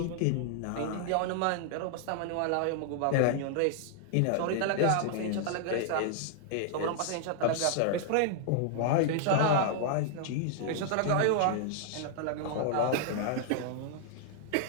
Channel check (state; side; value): different; both; correlation -0.01